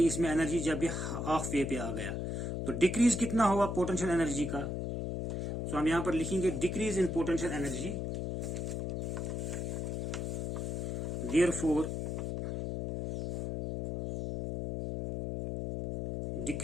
इसमें एनर्जी जब ये हाफ वे पे आ गया। तो डिक्रीज कितना हुआ पोटेंशियल एनर्जी का? तो हम यहां पर लिखेंगे decrease in potential energy, therefore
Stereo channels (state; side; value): noise; left; hum, 1 dB below the sound